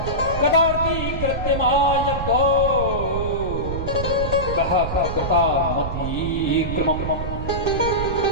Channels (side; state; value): right; noise; rumble, 5 dB below the sound